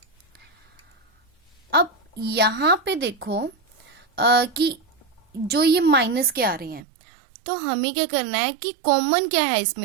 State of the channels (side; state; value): left; drops out; at 6.8 s